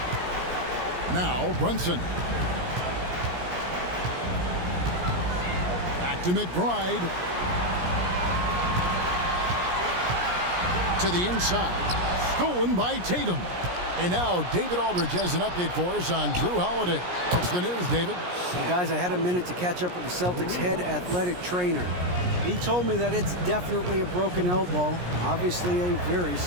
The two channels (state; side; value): late; left; 17 ms